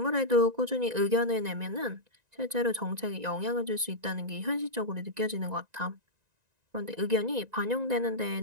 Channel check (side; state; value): left; late; 1.9 ms